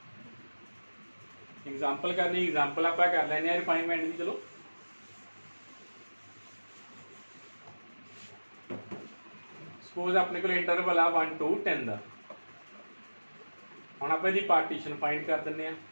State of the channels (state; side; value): inverted; both; correlation -1.00